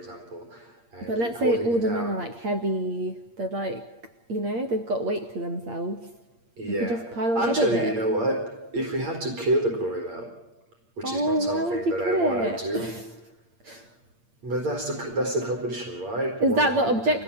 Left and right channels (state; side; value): late; left; 8.6 ms